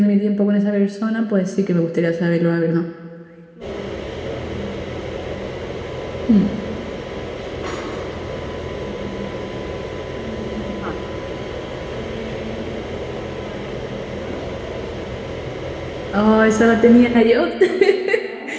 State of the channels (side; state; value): both; identical; correlation 1.00